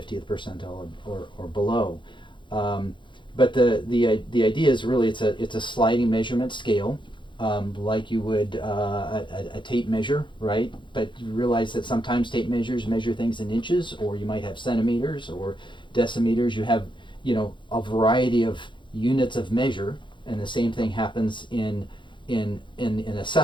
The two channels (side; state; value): right; late; 0.23 ms